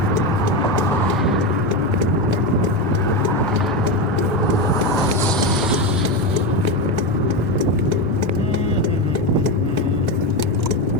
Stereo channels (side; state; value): both; normal; correlation 0.14